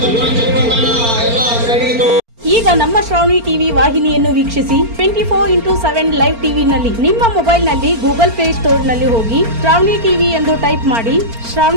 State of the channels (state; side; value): late; left; 4.4 ms